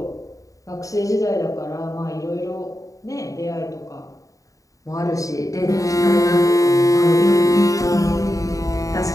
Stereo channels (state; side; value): late; right; 0.16 ms